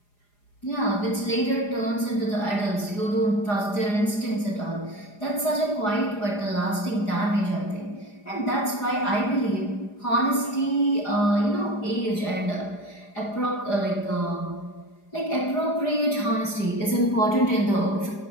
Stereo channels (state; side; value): late; right; 4.9 ms